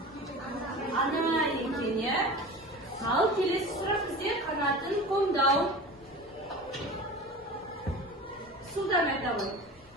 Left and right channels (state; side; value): normal; both; correlation 0.35